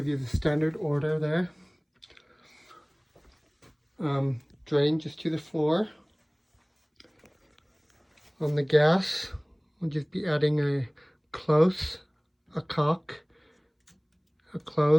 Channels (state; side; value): identical; both; correlation 1.00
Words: you the standard order there. Drain just to the floor. On the gas, we'll just be adding a close, a cock, a